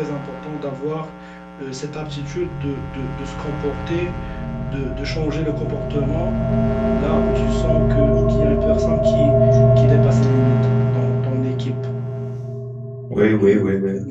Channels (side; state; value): both; identical; correlation 1.00